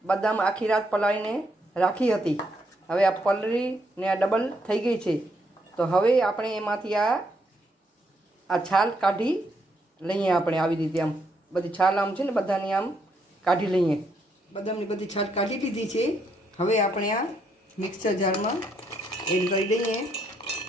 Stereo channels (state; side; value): normal; both; correlation 0.75